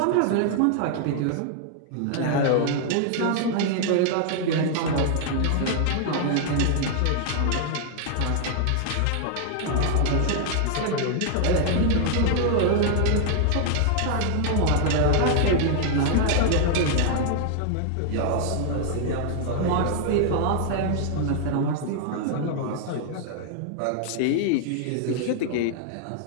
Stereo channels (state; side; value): different; both; correlation 0.00